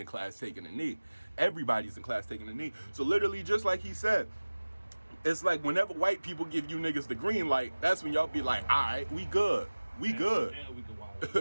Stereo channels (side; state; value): both; inverted; correlation -1.00